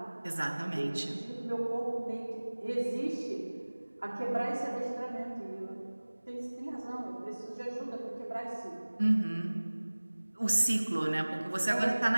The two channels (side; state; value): both; inverted; correlation -1.00